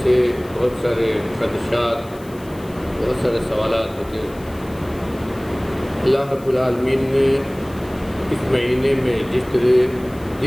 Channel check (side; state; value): left; noise; hiss, 24 dB below the sound